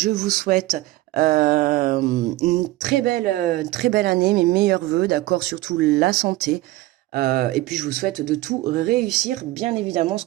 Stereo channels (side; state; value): left; quieter; 17.7 dB